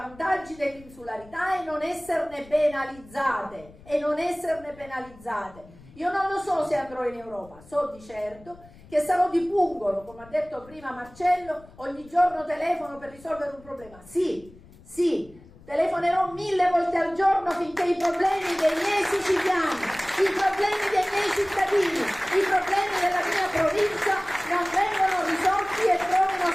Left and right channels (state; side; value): noise; left; rumble, 23 dB below the sound